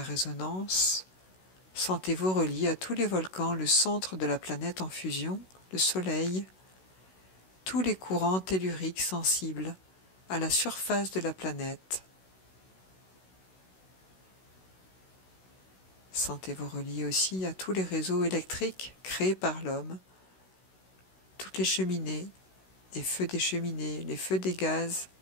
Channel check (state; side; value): late; right; 16 ms